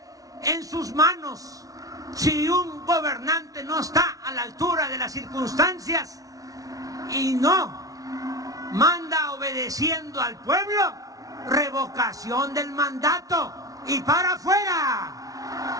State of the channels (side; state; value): left; late; 0.18 ms